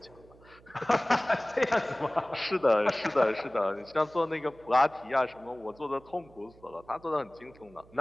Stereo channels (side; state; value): right; noise; hum, 25 dB below the sound